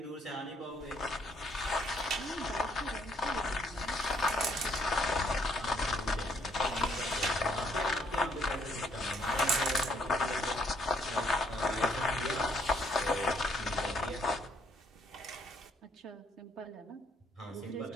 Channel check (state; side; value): normal; both; correlation 0.68